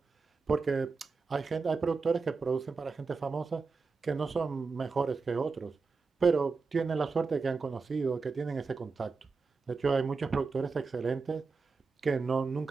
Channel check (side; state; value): left; quieter; 4.6 dB